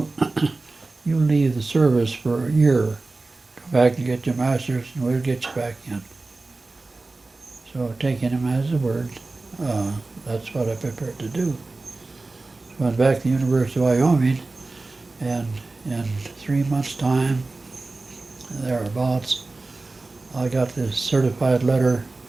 you leave the service for a year, come back and get your master's, and we'll get you back in. So taking him as a word, that's what I prepared to do. So I went back to the University of Wyoming, and in 3 months' time, thereabouts, I got this certified letter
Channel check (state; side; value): quieter; left; 3.4 dB